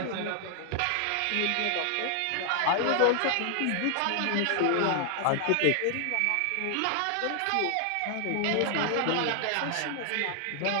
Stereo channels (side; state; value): both; different; correlation 0.00